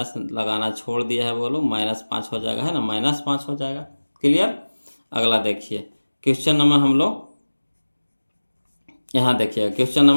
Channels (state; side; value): inverted; both; correlation -1.00